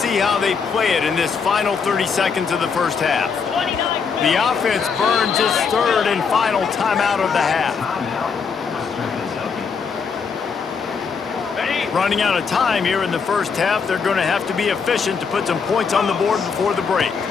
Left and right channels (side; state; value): right; quieter; 5.8 dB